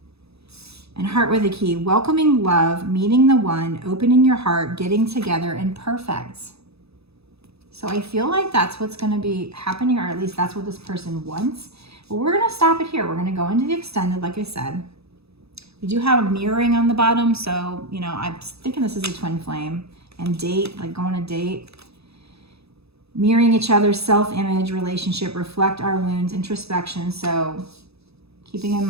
And heart with a key, welcoming love, meeting the one, opening your heart, getting together, and perfect. So I feel like that's what's going to be happening, or at least that's what this person wants. But we're going to stop it here. We're going to go into the extended, like I said. We do have a mirroring on the bottom, so, you know, I'm thinking this is a twin flame. And date, like go on a date. Mirroring each other's self-image, relationship, reflect our wounds, introspection. So keeping in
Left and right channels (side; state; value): left; late; 0.78 ms